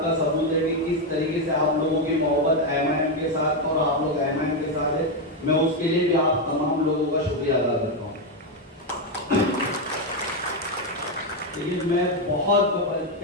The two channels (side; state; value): both; normal; correlation 0.06